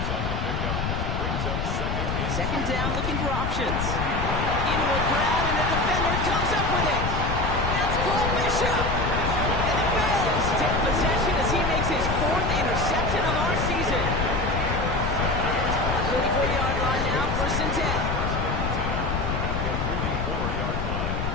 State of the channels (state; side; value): noise; left; rumble, 1 dB below the sound